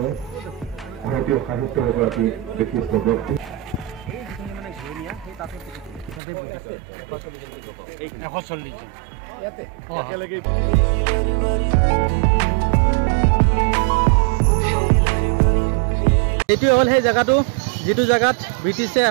ভাৰতীয় সাহিত্যৰ এগৰাকী বিশিষ্ট ব্যক্তি এইটোৱে হ'ল সেই জেগাটো যিটো জেগাত ব্ৰিটিছে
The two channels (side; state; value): left; drops out; at 6.2 s